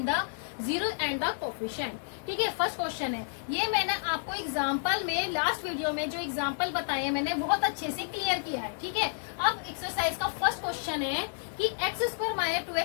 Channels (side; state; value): right; silent; 57 dB below the other